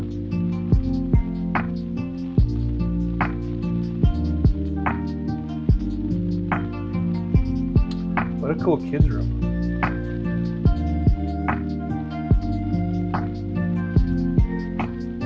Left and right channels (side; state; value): both; identical; correlation 1.00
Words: What a cool kids room.